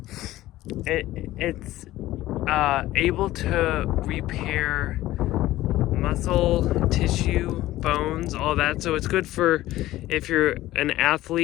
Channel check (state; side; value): quieter; right; 15.8 dB